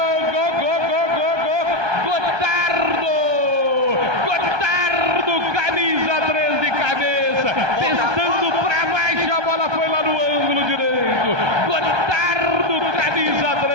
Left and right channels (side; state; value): left; late; 1.2 ms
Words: Gotardo, camisa 3 de cabeça, testando pra baixo, a bola foi lá no ângulo direito. Gotardo, camisa